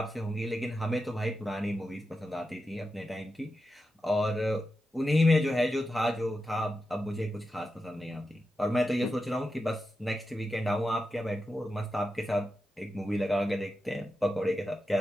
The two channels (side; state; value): both; normal; correlation 0.89